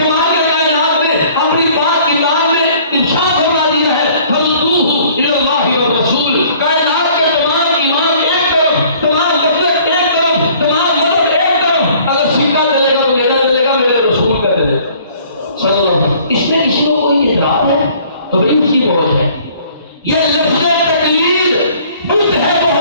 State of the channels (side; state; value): both; inverted; correlation -0.55